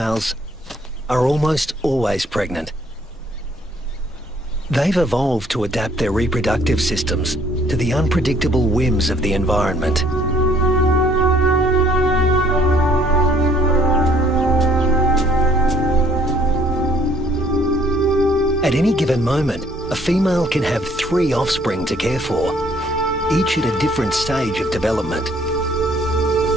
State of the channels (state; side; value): normal; both; correlation 0.61